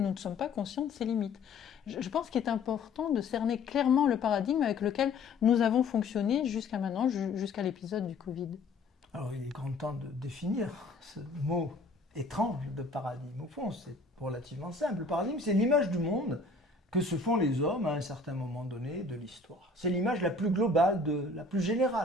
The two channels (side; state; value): right; quieter; 3.6 dB